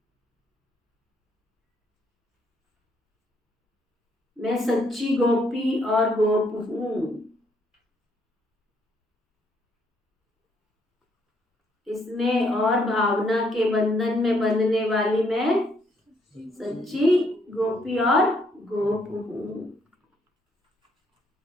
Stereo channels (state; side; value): normal; both; correlation 0.71